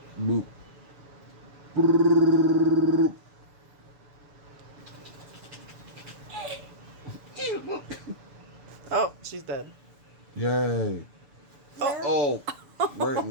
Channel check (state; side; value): late; left; 6.9 ms